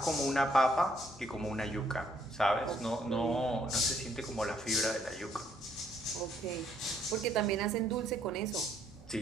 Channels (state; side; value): normal; both; correlation 0.68